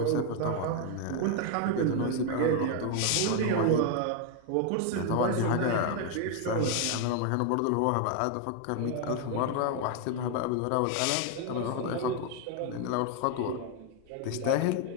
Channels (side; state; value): both; different; correlation 0.01